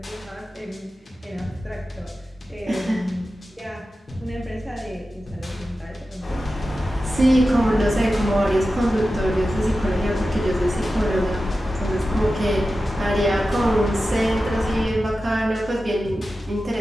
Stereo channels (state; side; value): normal; both; correlation 0.93